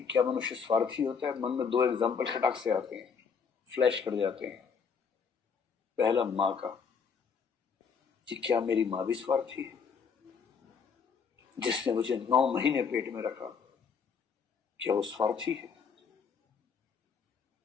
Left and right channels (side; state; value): right; quieter; 6.0 dB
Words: क्या मनुष्य स्वार्थी होता है, मन में दो एग्जाम्पल खटाक से आते हैं, फ्लैश कर जाते हैं। पहला माँ का, कि क्या मेरी माँ भी स्वार्थी है, जिसने मुझे 9 महीने पेट में रखा, क्या वो स्वार्थी है?